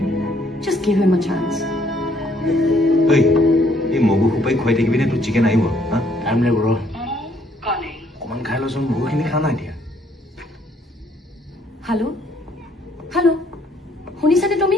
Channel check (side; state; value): both; normal; correlation 0.66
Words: just give him a chance এই মগু সোপাই খুৱাই থাকিবি নে তোৰ চিকেন আহিব টাইম লাগিব ৰ অকণমান খাই লৈচোন বহুখিনি খা নাই এতিয়া হেল্ল' শুনিছানে তুমি